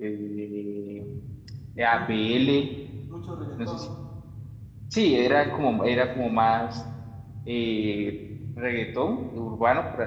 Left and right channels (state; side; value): identical; both; correlation 1.00